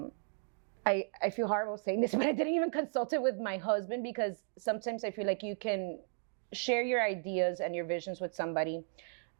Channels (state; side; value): silent; left; digital silence